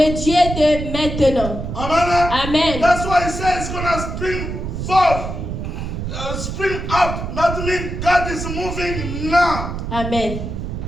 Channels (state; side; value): noise; right; rumble, 5 dB below the sound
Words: Dieu de maintenant. Amen. Amen. That's why he says it's gonna spring forth, spring up. That means God is moving now. Amen.